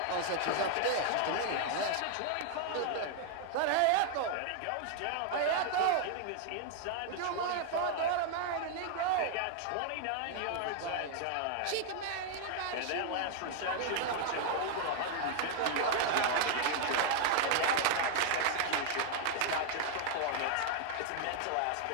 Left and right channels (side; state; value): both; different; correlation 0.00